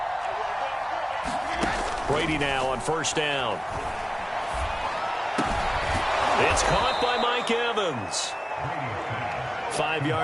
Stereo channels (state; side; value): identical; both; correlation 1.00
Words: Brady now on 1st down. It's caught by Mike Evans. 5